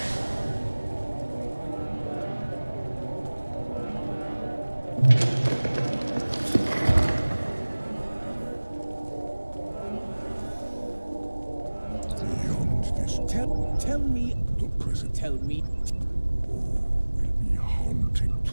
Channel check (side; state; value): both; inverted; correlation -1.00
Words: Beyond this, Tell me. the present Tell me. will be haunting.